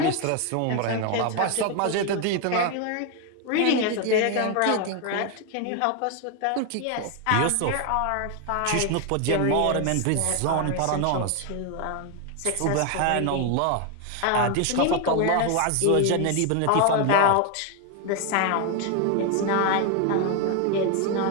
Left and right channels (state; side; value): different; both; correlation 0.01